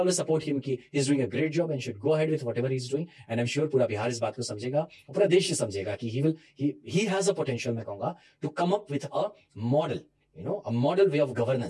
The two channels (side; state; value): both; identical; correlation 1.00